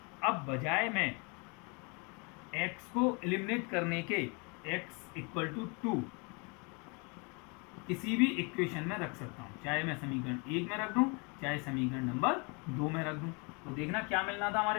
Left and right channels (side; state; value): right; quieter; 32.1 dB